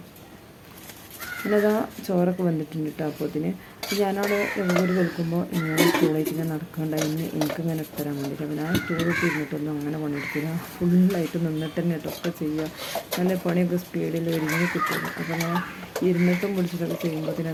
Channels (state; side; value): identical; both; correlation 1.00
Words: പിന്നെ അതാ ചോറൊക്കെ വന്നിട്ടുണ്ട് കേട്ടോ. അപ്പോൾ അതിന് ഞാനവിടെ ഒരു വെളുക്കുമ്പോൾ ഇങ്ങനെ സ്റ്റൂളായിട്ട് ഇങ്ങനെ നടക്കണ്ടായിരുന്നു. എനിക്കിങ്ങനെ ഇട്ടരാൻ വേണ്ടിയിട്ട്. അപ്പോൾ ഞാൻ സ്റ്റൂളിട്ട് ഇരുന്നിട്ടൊന്നും അങ്ങനെ പണിയെടുക്കില്ല. ഫുള്ളായിട്ട് നിന്നിട്ട് തന്നെ ഇട്ടൊക്കെ ചെയ്യുക. നല്ല പണിയൊക്കെ സ്പീഡിൽ ഒരുങ്ങി കിട്ടുള്ളൂ. അപ്പോൾ ഞാൻ ഇരുന്നിട്ടും പിടിച്ചിട്ടൊക്കെ ചെയ്യുമ്പോൾ പിന്നെ